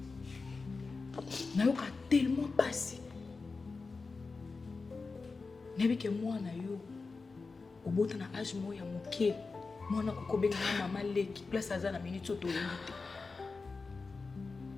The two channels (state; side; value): quieter; right; 4.2 dB